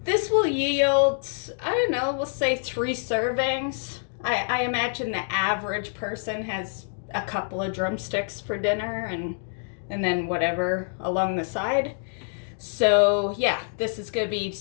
This will yield, I don't know, we'll say 3 servings. I imagine the average person has a couple of drumsticks for dinner and then whatever along the side. So yeah, this is gonna be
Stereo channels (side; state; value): right; silent; digital silence